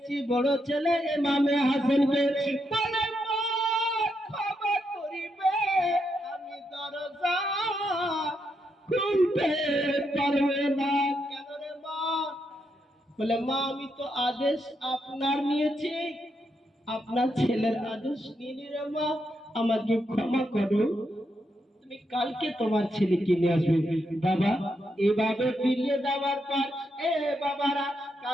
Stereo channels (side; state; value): both; normal; correlation 0.81